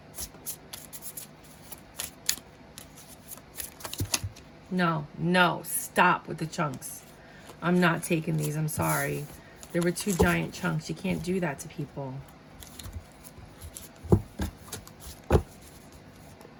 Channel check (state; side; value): identical; both; correlation 1.00